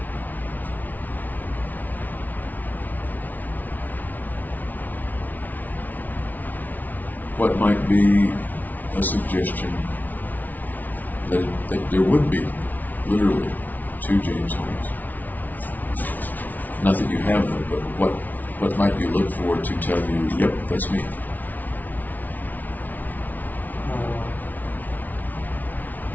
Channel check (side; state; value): right; late; 0.080 ms